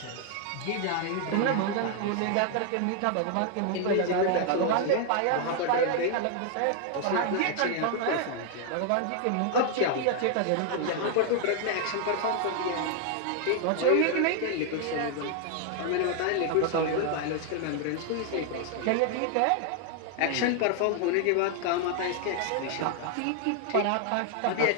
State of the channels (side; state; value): both; different; correlation 0.00